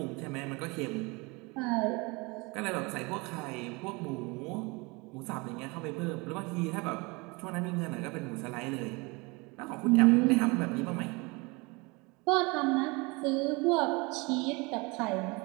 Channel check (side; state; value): left; quieter; 26.8 dB